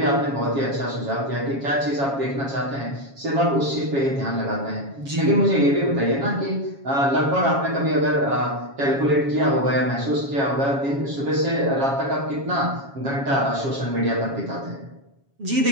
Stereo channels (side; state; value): left; late; 7.3 ms